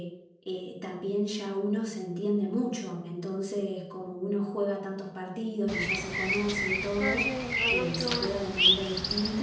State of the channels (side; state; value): both; identical; correlation 1.00